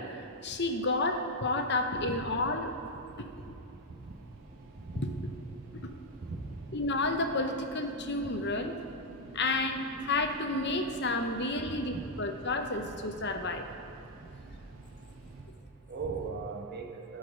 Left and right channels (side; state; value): both; normal; correlation 0.00